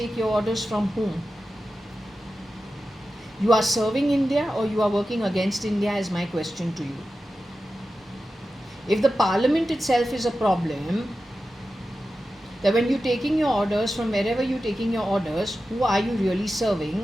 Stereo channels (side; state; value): both; normal; correlation 0.93